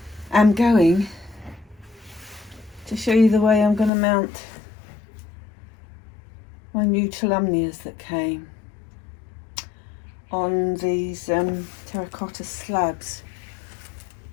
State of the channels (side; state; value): right; drops out; at 3.9 s